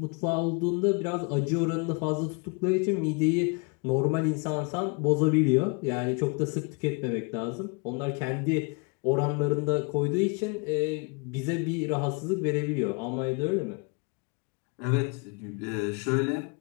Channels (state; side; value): quieter; right; 32.1 dB